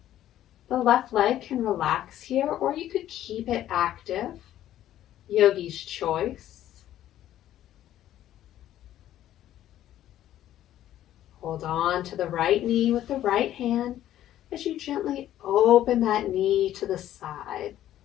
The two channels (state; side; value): quieter; right; 12.5 dB